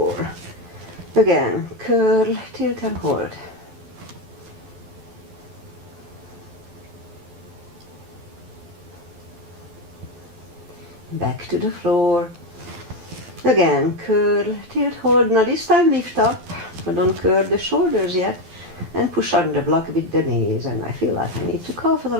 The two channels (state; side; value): late; left; 12 ms